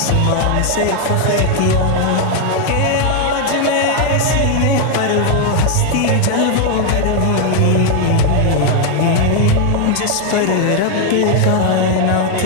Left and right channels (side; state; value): both; different; correlation 0.01